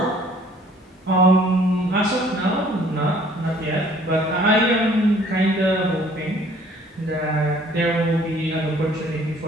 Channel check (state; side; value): normal; both; correlation 0.57